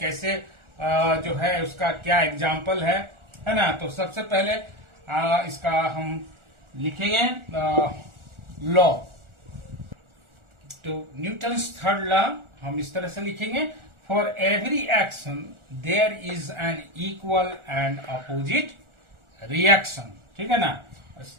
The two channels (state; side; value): late; left; 1.4 ms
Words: जो है उसका क्या एग्जाम्पल है ना। तो सबसे पहले इसका हम लिखेंगे लॉ। तो न्यूटन्स थर्ड लॉ हम इस तरह से लिखेंगे, for every action there is an equal and opposite reaction. ठीक है ना।